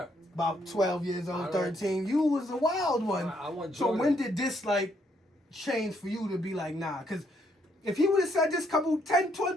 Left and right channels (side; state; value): both; normal; correlation 0.72